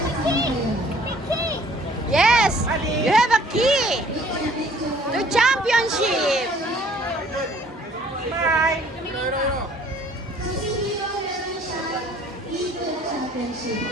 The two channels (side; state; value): both; normal; correlation 0.57